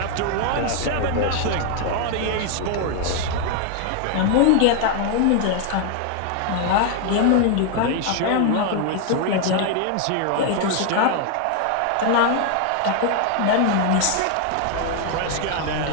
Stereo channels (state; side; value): different; both; correlation 0.00